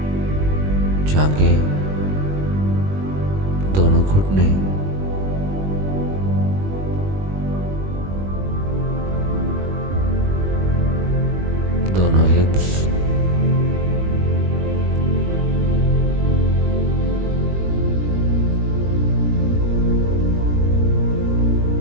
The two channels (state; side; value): late; left; 21 ms